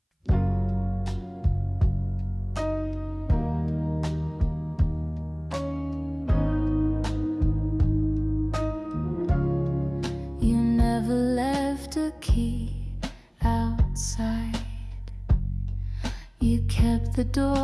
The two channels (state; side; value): identical; both; correlation 1.00